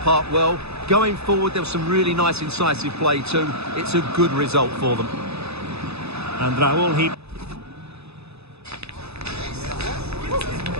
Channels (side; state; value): left; late; 0.79 ms